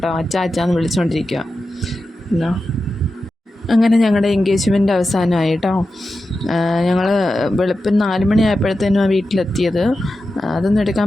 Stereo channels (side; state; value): both; normal; correlation 0.91